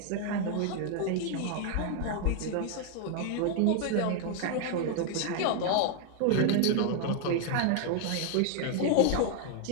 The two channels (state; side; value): different; both; correlation 0.00